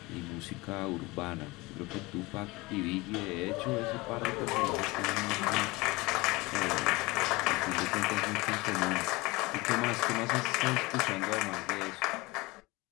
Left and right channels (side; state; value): right; quieter; 22.8 dB